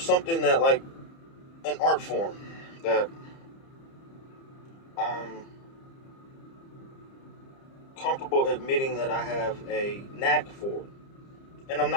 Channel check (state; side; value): late; right; 30 ms